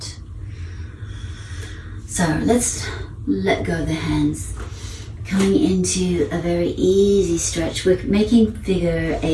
So let's let go of the hands. Coming into a very easy stretch. We're making figure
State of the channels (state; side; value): identical; both; correlation 1.00